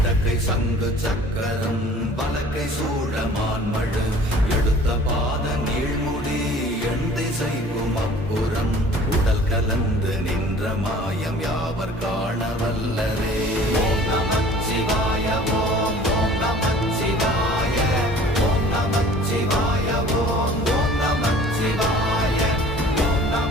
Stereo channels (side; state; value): both; normal; correlation 0.48